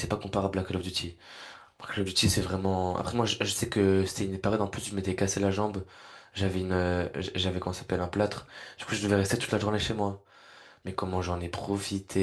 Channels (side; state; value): both; identical; correlation 1.00